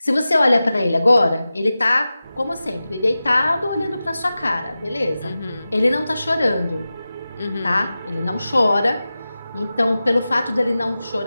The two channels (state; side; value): inverted; both; correlation -0.94